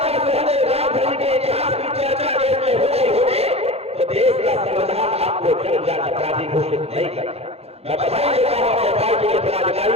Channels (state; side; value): late; left; 0.29 ms